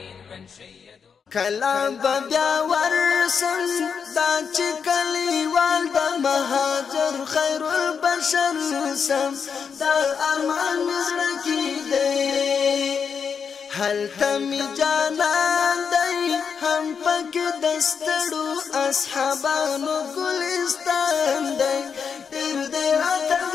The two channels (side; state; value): right; quieter; 6.4 dB